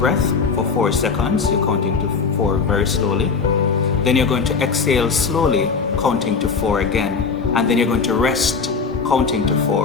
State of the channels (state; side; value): quieter; right; 5.3 dB